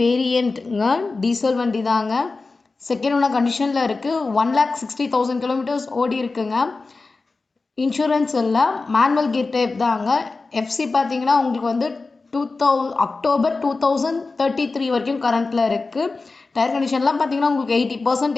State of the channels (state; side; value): quieter; right; 3.8 dB